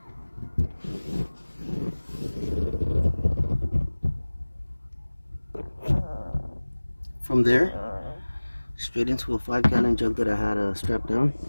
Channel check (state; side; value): inverted; both; correlation -1.00